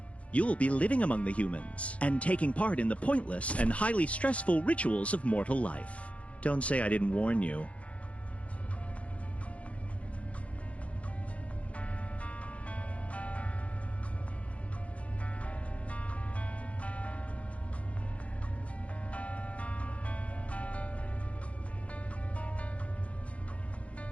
You'll be living among the humans and taking part in the pointless and highly stressful rituals of mortal life. Don't say I didn't warn you.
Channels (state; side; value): late; right; 0.064 ms